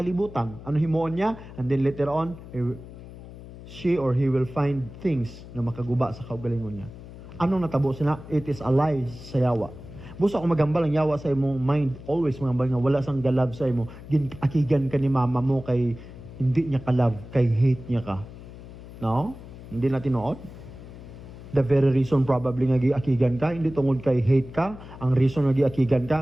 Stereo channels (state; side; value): noise; left; hum, 15 dB below the sound